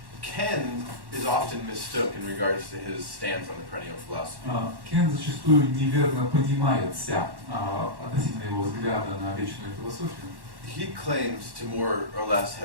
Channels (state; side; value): late; left; 1.1 ms